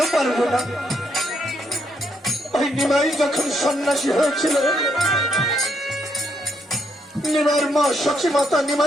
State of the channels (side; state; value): both; normal; correlation 0.75